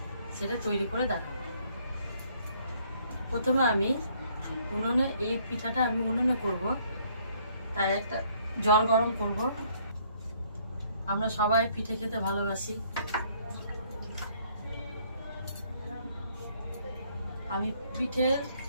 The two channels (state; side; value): inverted; both; correlation -0.65